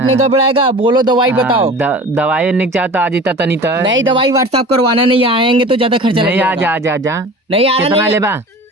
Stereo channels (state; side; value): normal; both; correlation 0.39